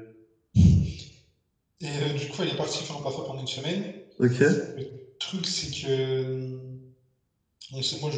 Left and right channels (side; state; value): both; identical; correlation 1.00